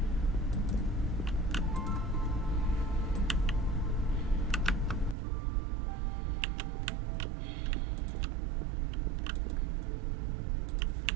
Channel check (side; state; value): left; drops out; at 5.2 s